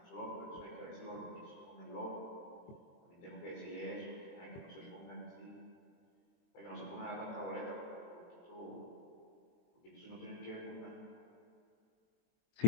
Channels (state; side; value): late; right; 23 ms